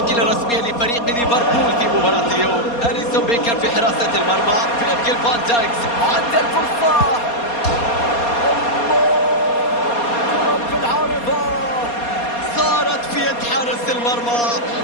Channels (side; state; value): right; late; 4.2 ms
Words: الرسمية لفريق ليفربول في مباراة اليوم: أليسون بيكر في حراسة المرمى، فيرجيل فان دايكس عند الفرصة، حارس المرمى.